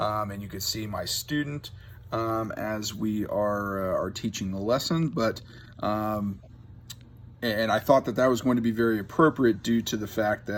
you could see my student as we are teaching the lesson, but. And I thought that was going to be very appropriate due to the fact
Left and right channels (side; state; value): both; identical; correlation 1.00